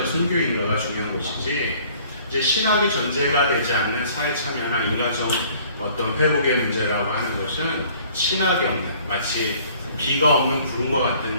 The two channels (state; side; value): inverted; both; correlation -0.55